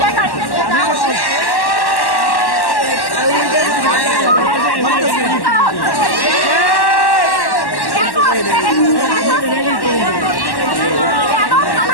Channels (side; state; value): right; late; 1.1 ms